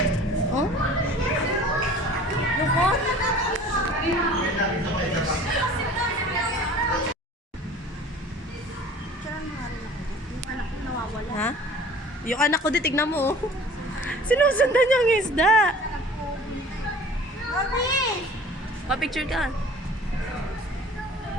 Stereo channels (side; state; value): both; normal; correlation 0.46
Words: Oh? Lukot? Picture mo nga rin ako. Yung anak ko nawawala. Ha? Yung anak ko, di tignan mo. Oh. Sinusundan niya ang isda. Mami! Pa-picture ka.